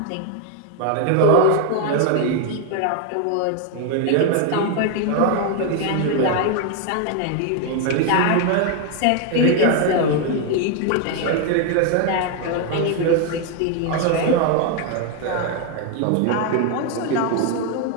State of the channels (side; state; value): both; different; correlation 0.01